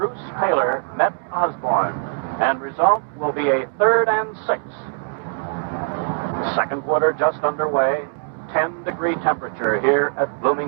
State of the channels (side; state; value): left; silent; digital silence